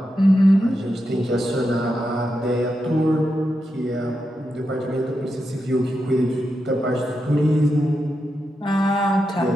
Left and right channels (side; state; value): both; normal; correlation 0.87